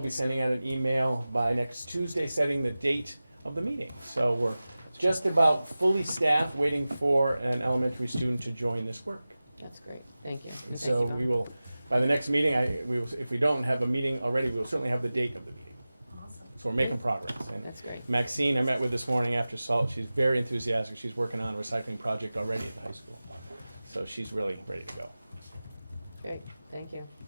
sending out an email by next Tuesday setting the date of the meeting. So we're just about fully staffed, waiting for an elementary student to join this work. That's great, thank you. And thank So you, Bob. we will, by the next meeting, if we don't have a meeting already, we will certainly have the date of the meeting. Awesome. So we're making progress. And That's great. Maxine, I met with this morning after SALT. She's very enthusiastic. She's working on a recycling project already at the high school. So she's really ready to go. Great, thank you.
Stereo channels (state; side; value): inverted; both; correlation -0.97